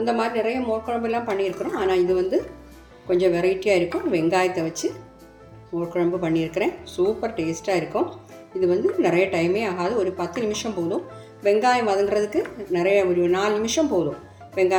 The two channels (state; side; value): identical; both; correlation 1.00